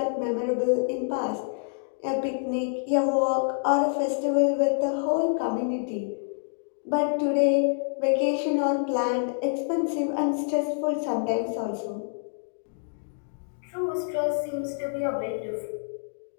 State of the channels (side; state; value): right; silent; digital silence